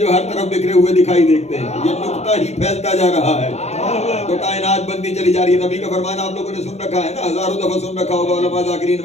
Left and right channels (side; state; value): right; late; 0.32 ms